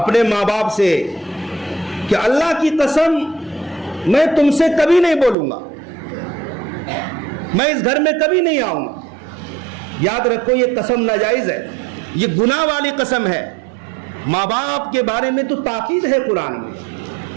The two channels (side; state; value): left; drops out; at 5.4 s